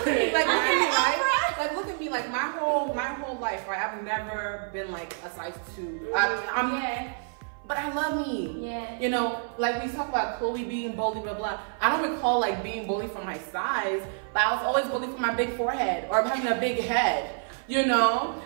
at me, like, look at me, right? Like, look at me, like, my whole life, right? I've never been like a size 2. But I love me. Yeah. You know, like we talk about Khloe being bullied, blah blah. I don't recall like being bullied for my size, but I was always bullied for my big forehead or having a big head. You know,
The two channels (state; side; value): silent; left; 56 dB below the other